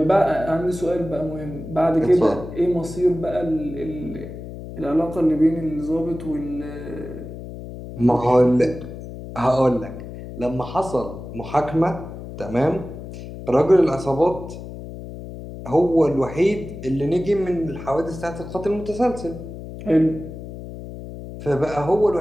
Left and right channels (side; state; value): left; noise; hum, 11 dB below the sound